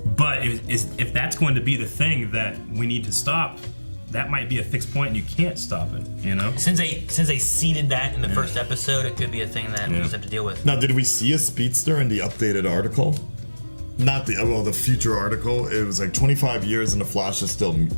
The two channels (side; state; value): both; inverted; correlation -1.00